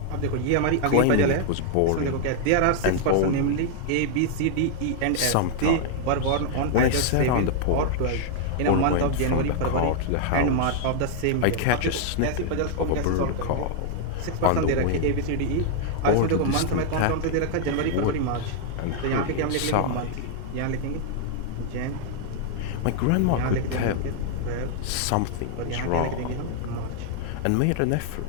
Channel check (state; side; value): different; both; correlation 0.00